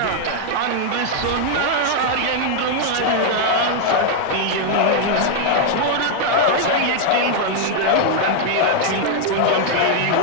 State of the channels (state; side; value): different; both; correlation 0.00